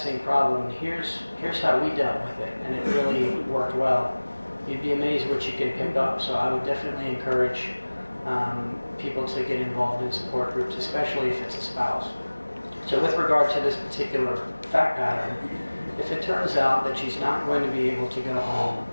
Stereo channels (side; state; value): both; inverted; correlation -1.00